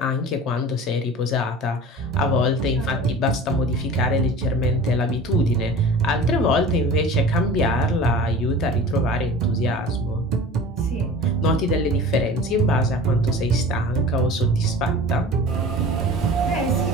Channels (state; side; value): normal; both; correlation 0.39